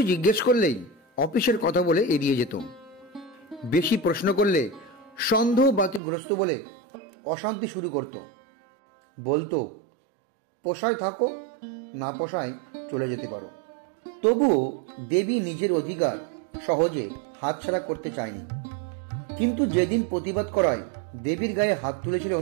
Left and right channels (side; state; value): left; drops out; at 6.0 s